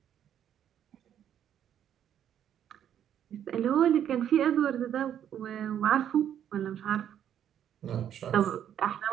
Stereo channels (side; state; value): left; quieter; 9.8 dB